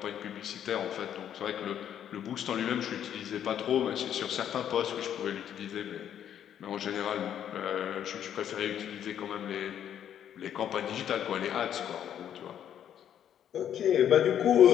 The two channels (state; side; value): quieter; right; 9.8 dB